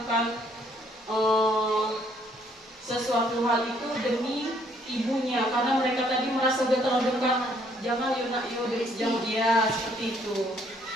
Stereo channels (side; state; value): both; normal; correlation 0.66